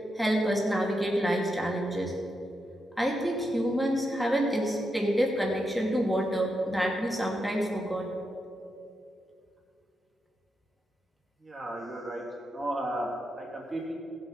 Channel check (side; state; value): both; normal; correlation 0.85